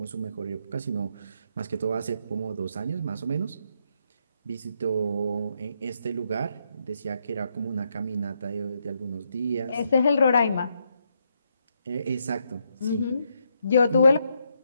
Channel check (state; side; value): inverted; both; correlation -0.78